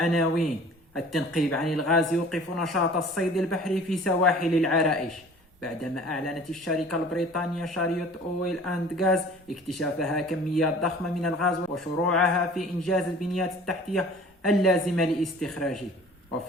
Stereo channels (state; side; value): normal; both; correlation 0.47